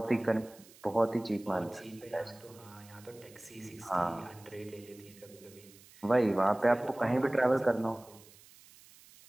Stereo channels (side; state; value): right; noise; hiss, 23 dB below the sound